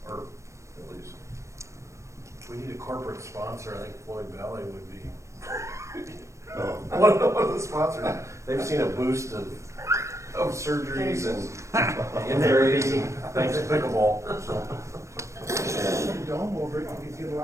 or at least. We need a corporate sponsor, I think Floyd Valley would be Oh, one of the sponsors. They've seen a boost of surgeries and injuries, thanks to pickleball, so. Dome over it, you could get a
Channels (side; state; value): left; late; 0.15 ms